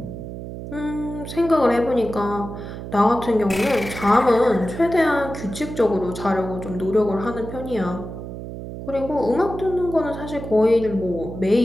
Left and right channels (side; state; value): right; noise; hum, 9 dB below the sound